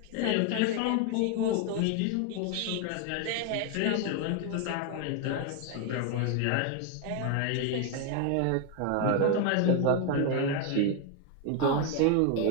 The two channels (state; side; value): different; both; correlation 0.01